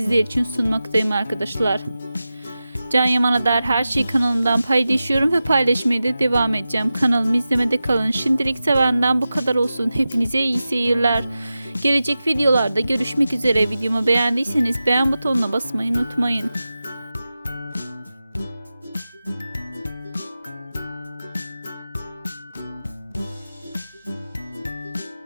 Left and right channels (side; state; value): both; inverted; correlation -0.94